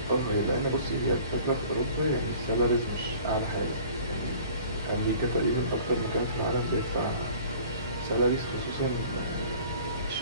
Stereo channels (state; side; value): inverted; both; correlation -0.48